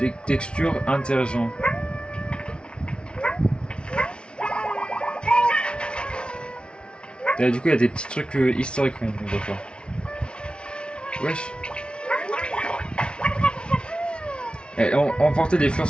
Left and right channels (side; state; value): right; late; 0.057 ms